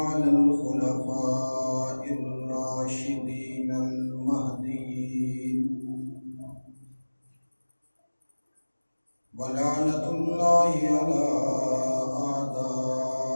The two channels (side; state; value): both; inverted; correlation -1.00